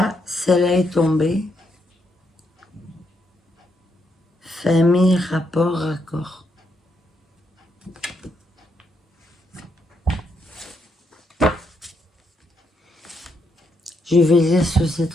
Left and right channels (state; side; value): normal; both; correlation 0.78